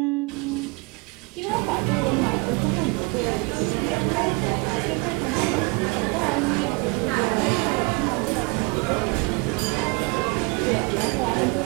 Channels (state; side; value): quieter; left; 29.2 dB